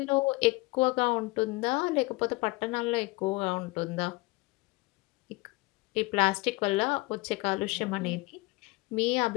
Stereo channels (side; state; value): right; quieter; 23.7 dB